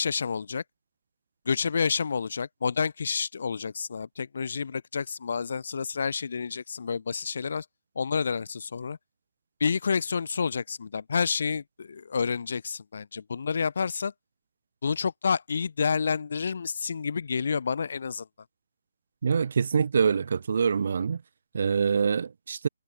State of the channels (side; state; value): both; inverted; correlation -0.84